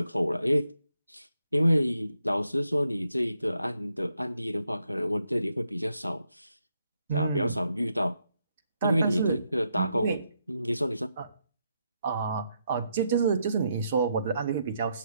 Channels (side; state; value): both; inverted; correlation -0.80